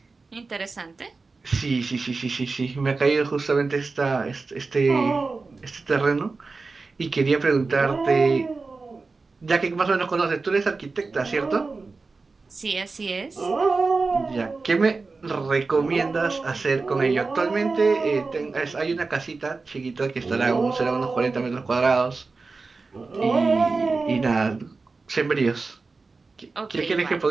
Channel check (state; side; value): quieter; left; 4.0 dB